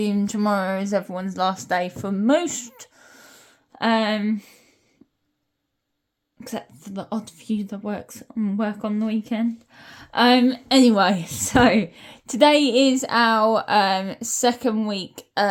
tomorrow is everyone's last day for most. Except for the odd few that work on the weekend. Anyway, so today is our second week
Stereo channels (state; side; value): identical; both; correlation 1.00